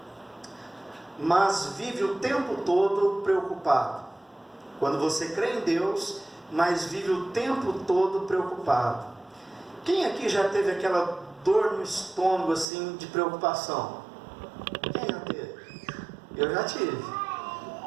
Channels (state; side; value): drops out; left; at 12.7 s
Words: Mas vive o tempo todo preocupado. Quando você crê em Deus, mas vive o tempo todo preocupado. Quem aqui já teve aquela dor no estômago assim de preocupação? Quem já teve? Eu já tive.